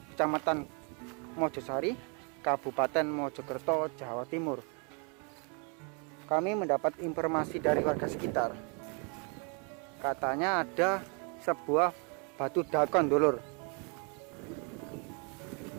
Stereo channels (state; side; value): quieter; left; 35.9 dB